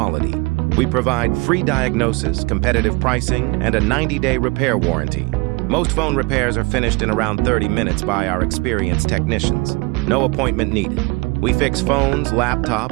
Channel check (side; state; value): left; quieter; 27.2 dB